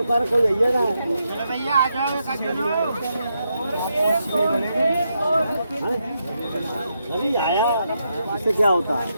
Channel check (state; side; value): inverted; both; correlation -0.82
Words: कोई है ना भैया आ जाओ अभी आया इससे क्या होता है